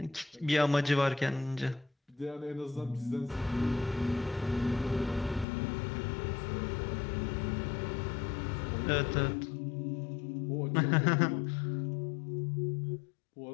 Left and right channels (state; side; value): drops out; right; at 5.5 s